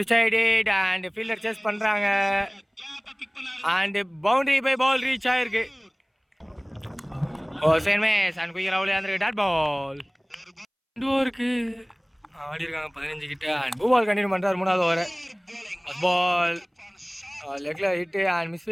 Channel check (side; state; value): both; identical; correlation 1.00